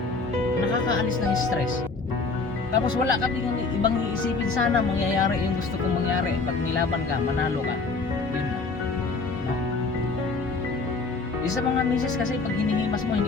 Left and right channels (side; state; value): right; quieter; 3.9 dB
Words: nakakaalis ng stress. Tapos wala kami ibang iisipin, sana mangyayari yung gusto kong mangyari. Pag nilaban ka, manalo ka. Yun na. No? Isa mga misis kasi pag hinihimas mo,